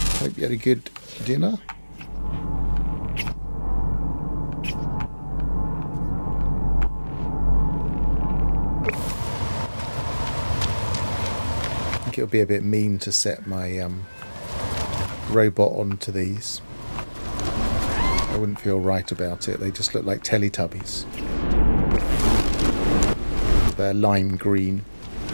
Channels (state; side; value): inverted; both; correlation -1.00